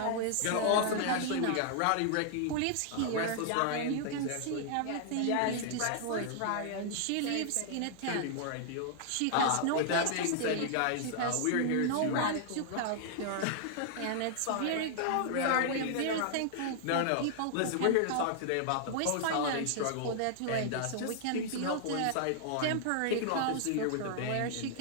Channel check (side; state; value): both; different; correlation -0.01